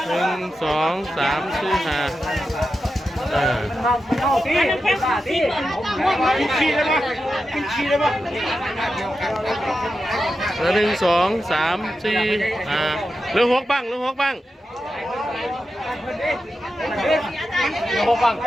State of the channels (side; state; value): both; normal; correlation 0.90